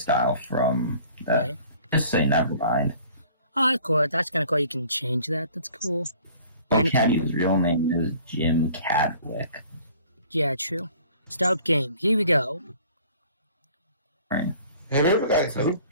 from that. Right. Just say never mind. Oh, cool. That's kind of cool. You can change that. That's cool. Well, Caddy's real name is Jim Cadwick. Yeah, true. Start game. Here we go. Right. Have you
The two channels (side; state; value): both; inverted; correlation -0.52